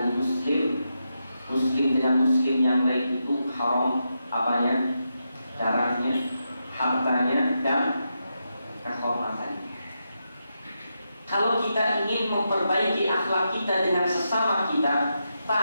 muslim dengan muslim yang lain itu haram apanya? Darahnya, hartanya, dan kehormatannya. Kalau kita ingin memperbaiki akhlak kita dengan sesama kita,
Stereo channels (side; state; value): both; inverted; correlation -0.86